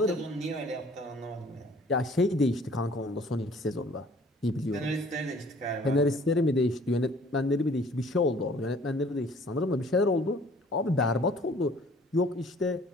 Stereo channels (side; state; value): both; normal; correlation 0.54